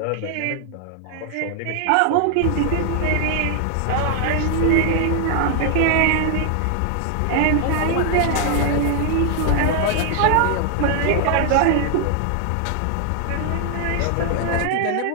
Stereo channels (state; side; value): different; both; correlation 0.00